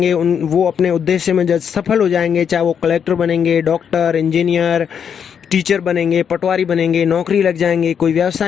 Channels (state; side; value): quieter; right; 7.6 dB